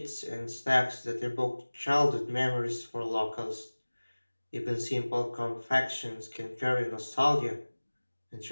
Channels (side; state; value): both; inverted; correlation -1.00